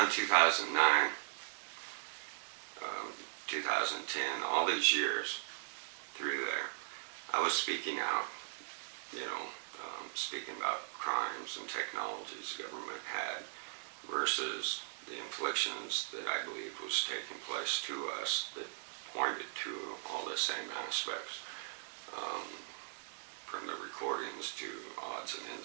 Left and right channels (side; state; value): left; silent; digital silence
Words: 2009, 2010, all these years through there, I was speaking out, speaking about crimes and technologies the government had versus the inflictions that I believe was taking place to us that pointed to all the same aspects. From the recordings to odds and